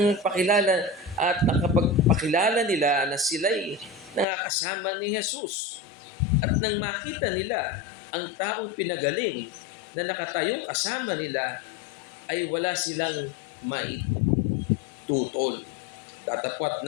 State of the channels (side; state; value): right; drops out; at 4.2 s